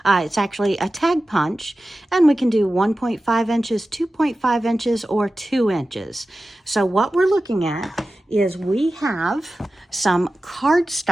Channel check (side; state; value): both; normal; correlation 0.94